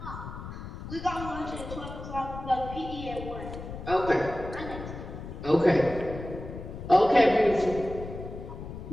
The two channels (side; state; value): left; noise; rumble, 10 dB below the sound